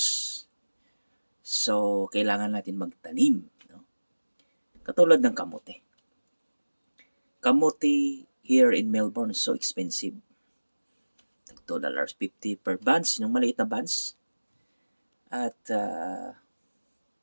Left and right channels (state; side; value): inverted; both; correlation -1.00